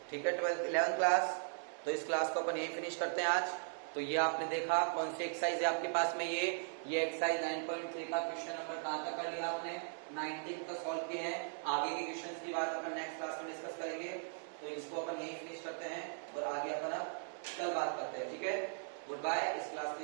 ठीक है 11th क्लास। तो इस क्लास को अपन यही फिनिश करते हैं आज। तो ये आपने देखा कौन सी एक्सरसाइज है आपके पास में। ये एक्सरसाइज 9.3 का क्वेश्चन नंबर कहां तक कर लिया आपने 19 का सॉल्व किए हैं। आगे के क्वेश्चंस की बात अपन नेक्स्ट क्लास में डिस्कस करेंगे। तो इसको अपन यही फिनिश करते हैं और आगे अपन अब कल बात करते हैं। ठीक है गुड बाय। इस क्लास को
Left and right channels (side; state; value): left; silent; digital silence